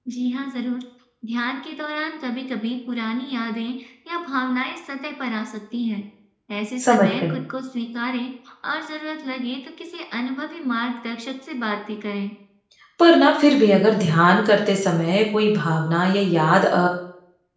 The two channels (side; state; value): both; identical; correlation 1.00